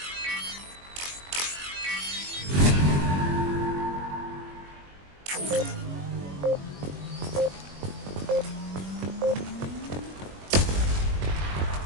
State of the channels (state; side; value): late; left; 21 ms